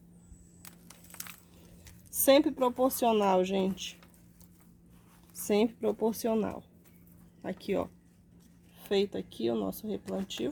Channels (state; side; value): identical; both; correlation 1.00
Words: Sempre proporcional, gente. Sempre proporcional. Aqui, ó. Feito aqui o nosso